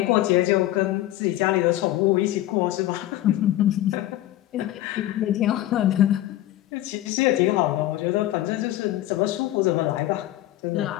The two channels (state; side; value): quieter; right; 14.7 dB